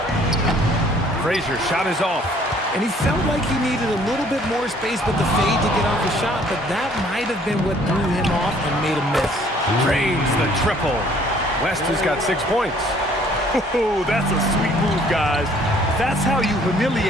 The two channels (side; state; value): both; normal; correlation 0.59